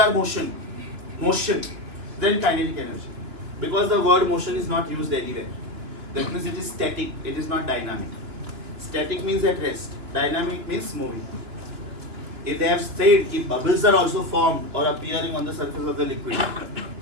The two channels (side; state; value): left; late; 2.9 ms